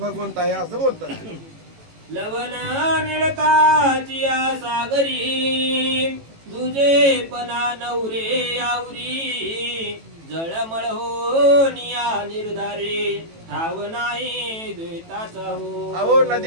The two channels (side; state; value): left; late; 18 ms